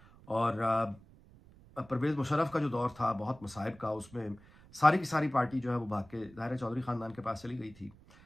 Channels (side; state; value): right; noise; rumble, 24 dB below the sound